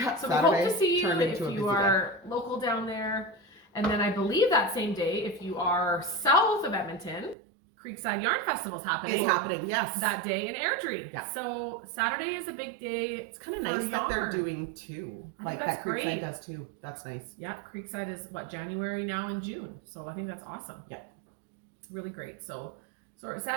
So Saturday we hope to see you turned if into a you busy are local down there. And then I believe that same day, if you are south of Edmonton, Creekside Yarn Festival's happening. It's happening, yes. That day in Airdrie. Yeah. So Saturday is a big day. It's kind of nice that they're doing two. I Like think that that's Creekside great. does too. That's nice. Yeah, Creekside is January now and June. So I think that's awesome. Yeah. It's really great. So we're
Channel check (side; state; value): left; drops out; at 7.4 s